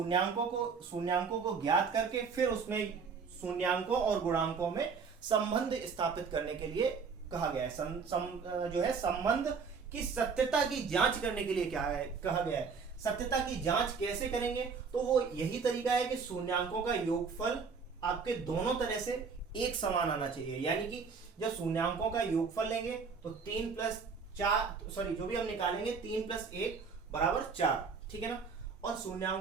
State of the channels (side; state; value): left; quieter; 5.4 dB